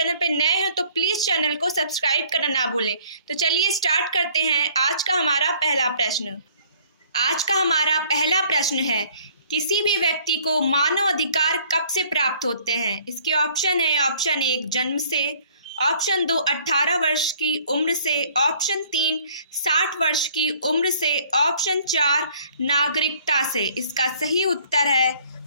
पर नए हो तो प्लीज़ चैनल को सब्सक्राइब करना ना भूलें। तो चलिए स्टार्ट करते हैं। आज का हमारा पहला प्रश्न है, किसी भी व्यक्ति को मानव अधिकार कब से प्राप्त होते हैं? इसके ऑप्शन है, ऑप्शन 1 जन्म से, ऑप्शन 2 18 वर्ष की उम्र से, ऑप्शन 3 60 वर्ष की उम्र से, ऑप्शन 4 नागरिकता से। इसका सही उत्तर है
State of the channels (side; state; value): both; inverted; correlation -0.57